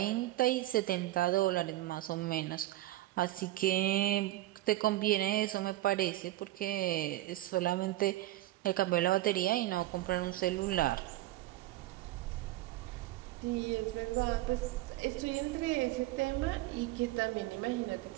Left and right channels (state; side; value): quieter; left; 16.1 dB